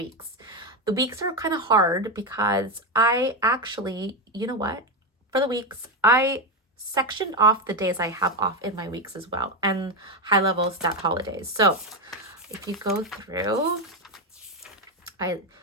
The weeks are kind of hard because I actually, you know what? For the weeks, I sectioned off the days I have off in my weeks as well, and high level stat holidays. So if you go through, I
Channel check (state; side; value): normal; both; correlation 0.10